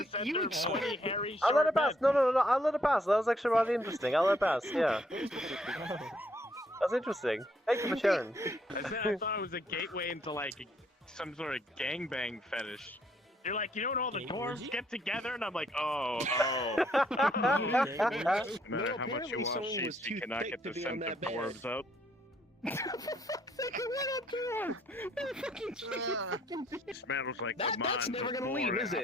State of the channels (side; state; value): both; normal; correlation 0.69